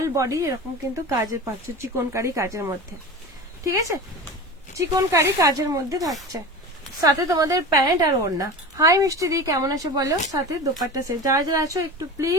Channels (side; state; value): both; normal; correlation 0.31